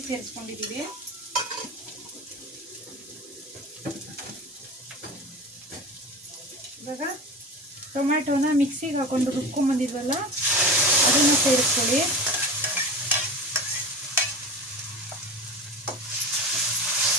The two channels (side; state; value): both; normal; correlation 0.30